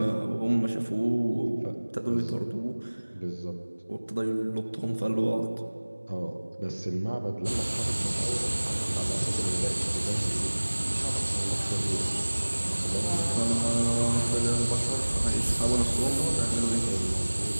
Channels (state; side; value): inverted; both; correlation -1.00